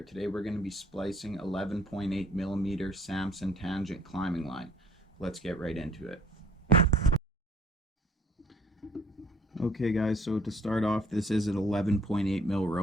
Today we're going to be splicing 11.8 millimeter Samson tangent climbing line. Let's get right into it. Okay guys, so to start off, this is an 11.8 mil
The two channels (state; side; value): normal; both; correlation 0.57